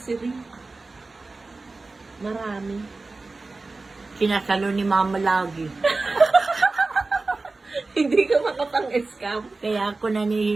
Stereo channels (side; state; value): left; quieter; 3.5 dB